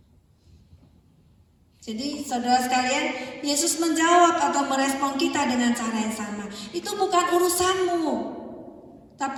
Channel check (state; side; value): identical; both; correlation 1.00